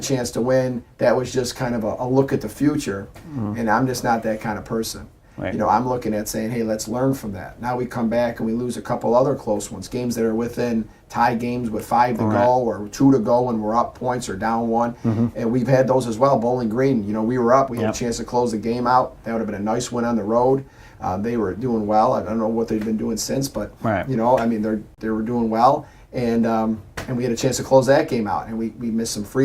to win. That was just kind of a look at the future. And I'm just not that kind of person. Right. You know, I'm looking at saying, hey, let's learn from that. Now we come back and we lose a couple other close ones, games that are within tie games with 5 to go or 2 to go when we're up points or down 1. And we've had those as well. Bowling Green, you know, we were up. We had a chance to close the game out. That would have been a nice win on the road. They were doing well. I don't know what they've been doing since, but, you know, I mean, they were doing well. And we had a chance to close that game out. And we missed some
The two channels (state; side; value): identical; both; correlation 1.00